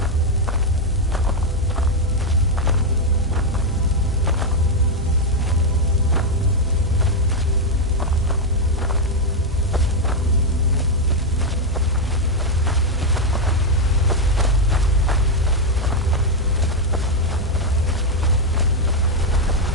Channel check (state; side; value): normal; both; correlation 0.02